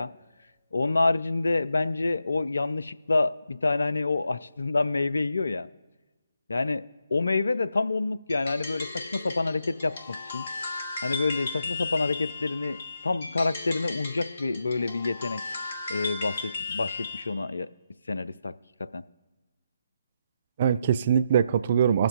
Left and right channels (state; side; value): inverted; both; correlation -0.83